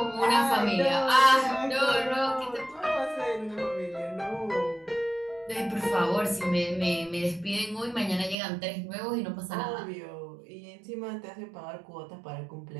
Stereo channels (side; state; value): left; drops out; at 8.3 s